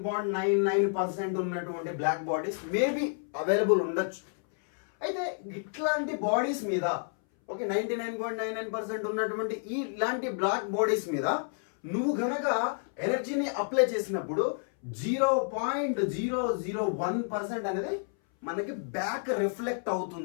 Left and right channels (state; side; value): silent; right; 58 dB below the other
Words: ఉన్నటువంటి బ్లాక్ బాడీస్ మేబీ అవైలబుల్ ఉండొచ్చు. అయితే ఇట్లాంటి బాడీస్ మీద ఓకే 99.99% ఉన్నటువంటి ఇలాంటి బ్లాక్ బాడీస్ మీద నువ్వు గనక ఎనర్జీని అప్లై చేసినప్పుడు 0.001% అనేది మనకి బ్యాక్ రిఫ్లెక్ట్